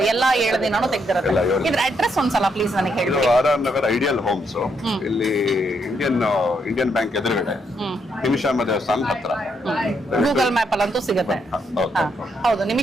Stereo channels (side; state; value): both; normal; correlation 0.77